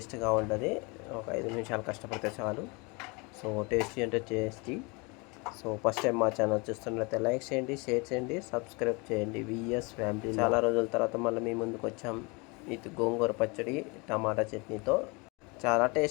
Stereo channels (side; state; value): right; quieter; 28.7 dB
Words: ఉంటుంది. ఒక 5 నిమిషాలు కష్టపడితే చాలు. సో టేస్టీ అంటే టేస్టీ. సో ఫస్ట్ టైం మా ఛానల్ చూస్తున్నట్లయితే లైక్ చేయండి, షేర్ చేయండి, సబ్స్క్రైబ్ చేయండి. VS family. చాలా రోజుల తర్వాత మళ్ళీ మీ ముందుకు వచ్చాం. ఇది గోంగూర పచ్చడి టమాటా చట్నీతో చాలా